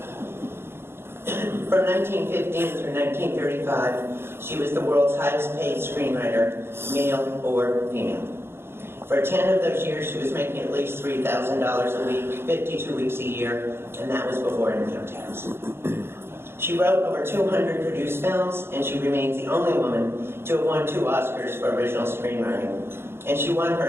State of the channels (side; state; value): left; late; 0.11 ms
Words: From 1915 through 1935, she was the world's highest paid screenwriter, male or female. For 10 of those years, she was making at least $3,000 a week, 52 weeks a year, and that was before income tax. She wrote over 200 produced films, and she remains the only woman to have won 2 Oscars for original screenwriting. And she won